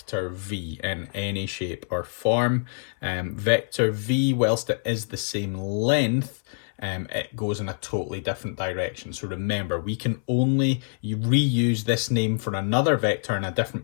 V in any shape or form. Vector V, whilst it is the same length, it goes in a totally different direction. So remember, we can only reuse this name for another vector in a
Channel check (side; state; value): right; silent; 61 dB below the other